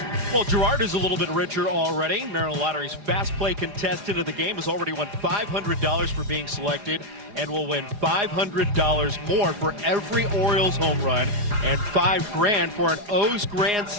Well, Gerard is a little bit richer already. Maryland Lottery's fast play contestant of the game has already won $500 for being selected, and will win $500 more for every Orioles home run, and $5 grand for an O's Grand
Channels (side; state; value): left; late; 4.8 ms